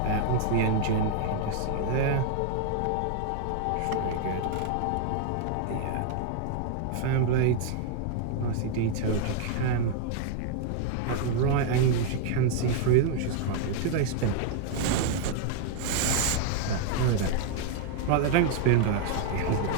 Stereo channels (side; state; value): both; different; correlation 0.00